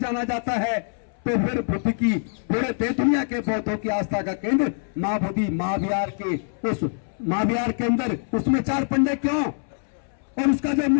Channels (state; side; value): silent; right; 62 dB below the other